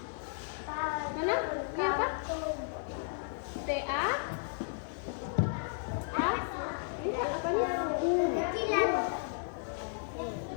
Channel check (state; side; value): silent; right; 55 dB below the other